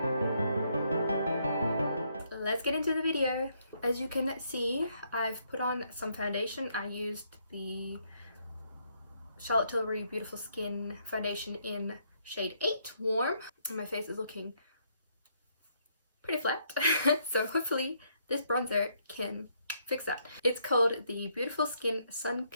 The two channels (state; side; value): inverted; both; correlation -0.73